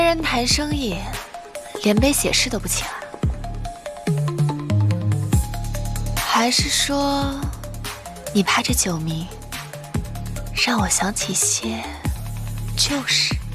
人谈生意，连杯写诗都不请啊？还是说，你怕这酒名让我想起些旧事？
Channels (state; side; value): identical; both; correlation 1.00